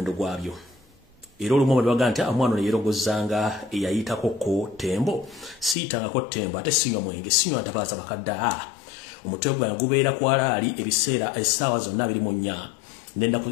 gwabyo era olumu babaga nti omwana ono yeerogozanga eyayitako ko tembo siyitangako tembo ate sinywa mwenge sinywa ntabaaza bakadde omutwe gwange gubeera kwalaali ebiseera essaawa zonna 24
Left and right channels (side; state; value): right; drops out; at 5.8 s